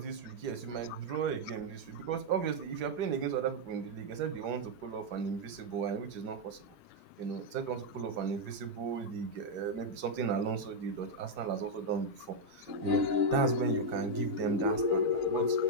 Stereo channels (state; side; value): late; left; 4.9 ms